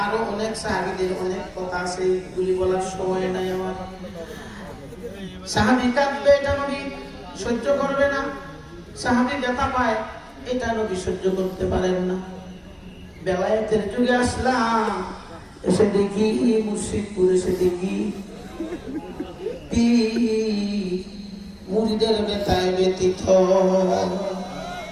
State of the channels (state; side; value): identical; both; correlation 1.00